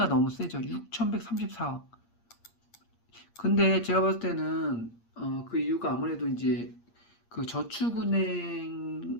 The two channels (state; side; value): late; right; 8.6 ms